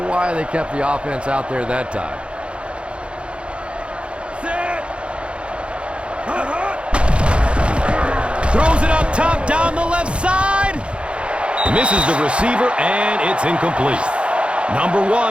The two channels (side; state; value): left; late; 0.058 ms